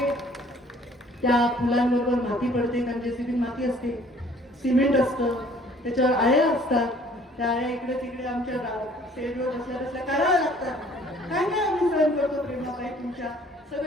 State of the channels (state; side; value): normal; both; correlation 0.56